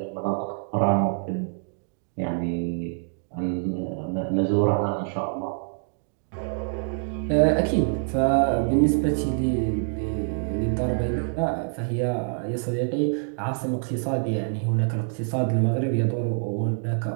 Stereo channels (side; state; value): left; silent; digital silence